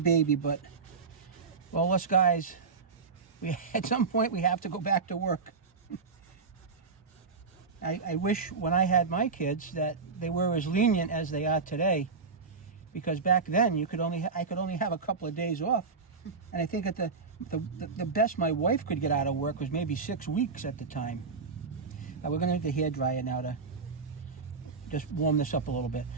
but well, us guys, at some point we have to go back to work. I wish when I had my kids that they were as lenient as they are today, because back then I could only have a couple of days off, and I think at the best my wife could get out of work was maybe 6 weeks at the time. Now we're going to need the hair dryer now to just warm this up a little bit.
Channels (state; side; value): quieter; left; 4.8 dB